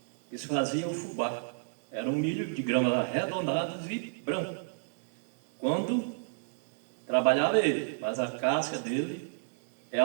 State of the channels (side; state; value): left; silent; digital silence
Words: que se fazia o fubá. Era um milho de grãos arredondados e branco. Quando trabalhava ele, mas a casca dele é